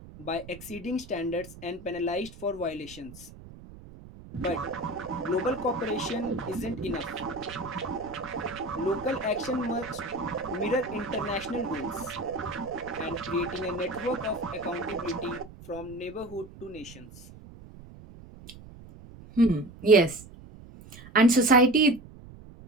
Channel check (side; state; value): right; noise; rumble, 17 dB below the sound